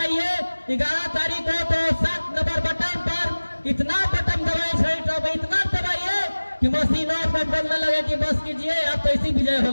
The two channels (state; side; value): inverted; both; correlation -1.00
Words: 11 तारीख को तो 7 नंबर बटन पर इतना बटन दबाए, छड़ी छाप इतना दबाइए कि मशीनों पर बोलने लगे कि बस कीजिए आप तो इसी विजय